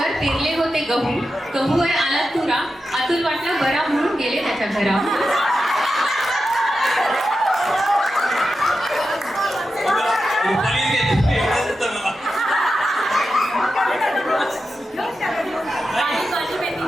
पेरले होते गहू. गहू आहे आला तुरा. अतुल वाटला बरा म्हणून गेले त्याच्या घरा.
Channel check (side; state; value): both; normal; correlation 0.90